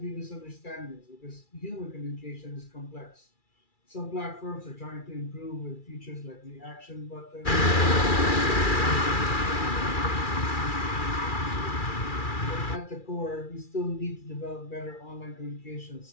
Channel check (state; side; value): late; right; 2.4 ms